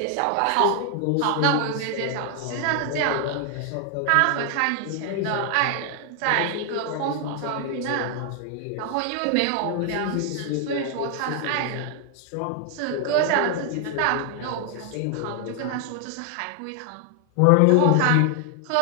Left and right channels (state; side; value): different; both; correlation 0.00